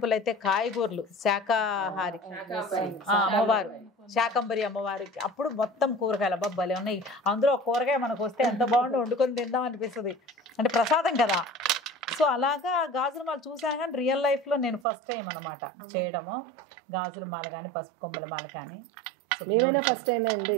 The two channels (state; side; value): drops out; left; at 14.9 s